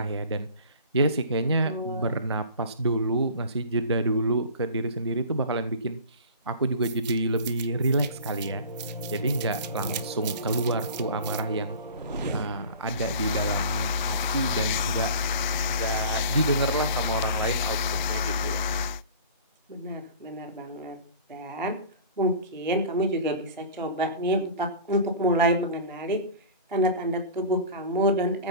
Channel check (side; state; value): both; inverted; correlation -0.40